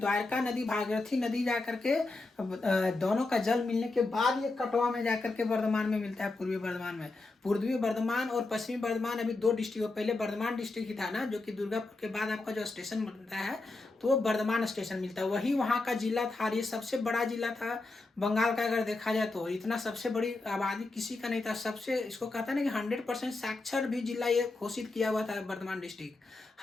नदी भागीरथी नदी जाकर के दोनों का जल मिलने के बाद ये कटवा में जाकर के बर्धमान में मिलता है, पूर्वी बर्धमान में। पूर्वी बर्धमान और पश्चिमी बर्धमान अभी दो डिस्ट्रिक्ट, पहले बर्धमान डिस्ट्रिक्ट ही था ना, जो कि दुर्गापुर के बाद आपका जो स्टेशन बनता है तो वो बर्धमान स्टेशन मिलता है, वही वहाँ का जिला था। ये सबसे बड़ा जिला था बंगाल का, अगर देखा जाए तो इतना सबसे बड़ी आबादी किसी का नहीं था। सबसे इसको कहता है ना कि 100% साक्षर भी जिला ये घोषित किया हुआ था बर्धमान डिस्ट्रिक्ट।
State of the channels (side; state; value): right; quieter; 3.3 dB